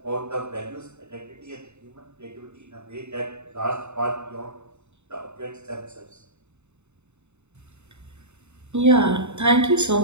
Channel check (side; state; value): left; late; 0.82 ms